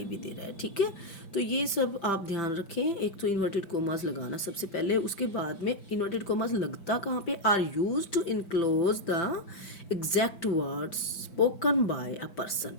भी दे रहा है। ठीक है। तो ये सब आप ध्यान रखें। एक तो इन्वर्टेड कोमास लगाना सबसे पहले, उसके बाद में इन्वर्टेड कोमास लगता कहाँ पे? Are use to enclose the exact words spoken by a person.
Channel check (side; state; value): right; late; 5.9 ms